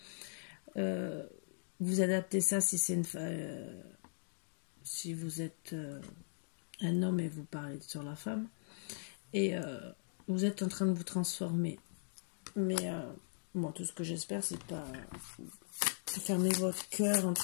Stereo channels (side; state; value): right; silent; digital silence